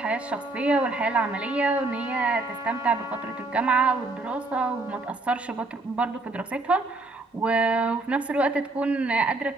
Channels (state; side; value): quieter; left; 3.2 dB